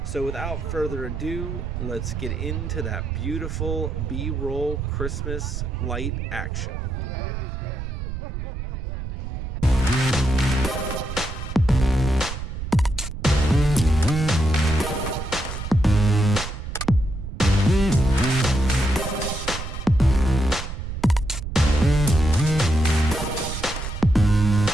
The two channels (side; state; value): right; noise; rumble, 7 dB below the sound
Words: So without further ado, let's get into that beautiful B-roll Christmas light action.